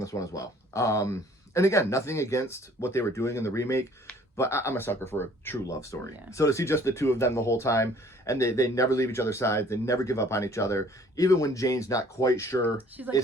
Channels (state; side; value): normal; both; correlation 0.55